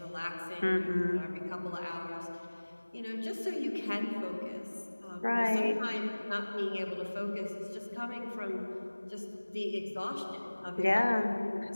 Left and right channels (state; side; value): inverted; both; correlation -1.00